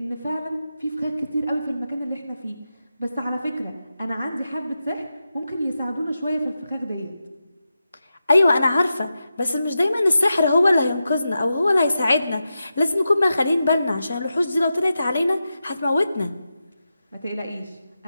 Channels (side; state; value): both; inverted; correlation -0.90